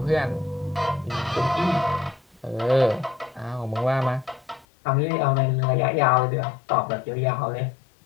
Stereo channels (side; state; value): right; drops out; at 4.7 s